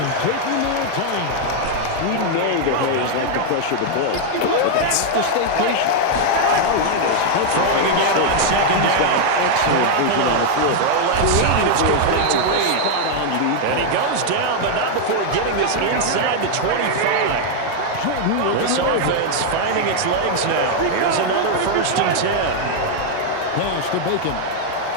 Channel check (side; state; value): both; different; correlation 0.00